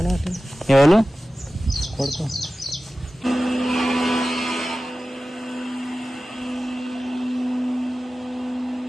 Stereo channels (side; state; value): both; normal; correlation 0.96